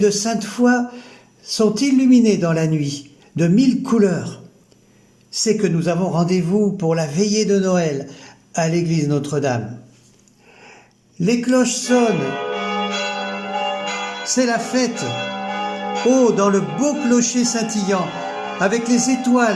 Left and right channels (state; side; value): identical; both; correlation 1.00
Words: Sainte-Foy sont illuminées dans la nuit de 1000 couleurs. C'est que nous avons rendez-vous pour la veillée de Noël à l'église Notre-Dame. Les cloches sonnent. C'est la fête. Oh, dans le beau clocher scintillant, avec les